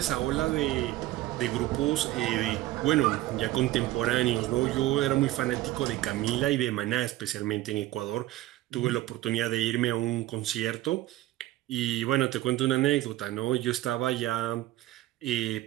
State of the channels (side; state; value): left; quieter; 15.9 dB